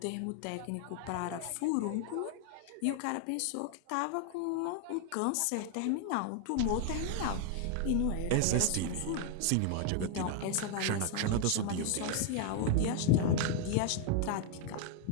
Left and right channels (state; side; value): different; both; correlation 0.00